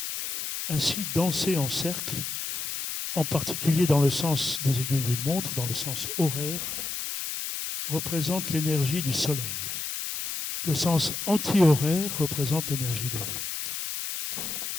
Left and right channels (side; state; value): left; noise; hiss, 4 dB below the sound